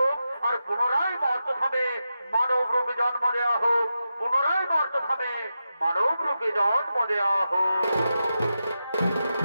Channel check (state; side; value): inverted; both; correlation -0.89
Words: আর পুনরায় মর্দধামে মানব রূপে জন্ম দেওয়া হোক, পুনরায় মর্দধামে মানব রূপে জন্ম দেওয়া হোক।